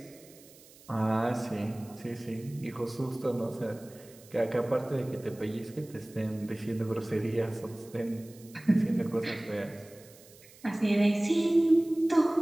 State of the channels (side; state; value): right; noise; hiss, 23 dB below the sound